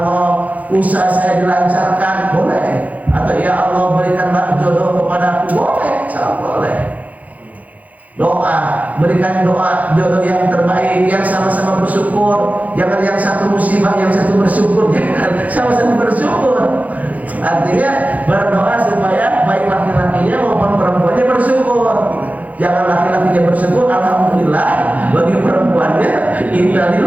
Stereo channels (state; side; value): late; left; 0.075 ms